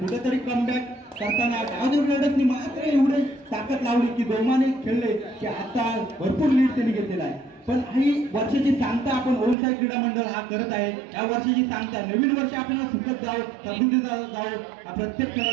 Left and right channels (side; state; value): left; drops out; at 9.6 s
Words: कमबॅक करताना गावदेवी रेडर्सनी मात्र एवढे ताकद लावली की जोमाने खेळले की आता भरपूर लीड त्यांनी घेतलेला आहे. पण ही वर्षाची सांगता आपण ओमसाई क्रीडा मंडळ हा करत आहे. या वर्षाची सांगता नवीन वर्ष आपल्याला सुखद जावं, समृद्धी जावं हा प्रत्येक